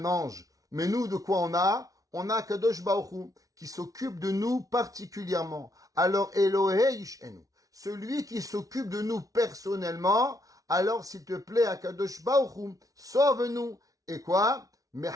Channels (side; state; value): left; late; 0.17 ms